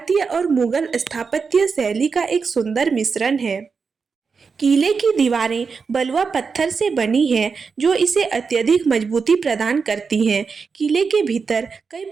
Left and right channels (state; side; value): quieter; left; 5.3 dB